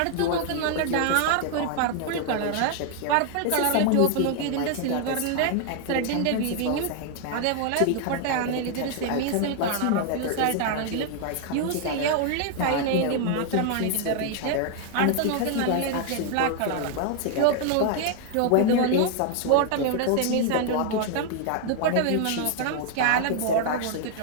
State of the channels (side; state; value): both; different; correlation 0.00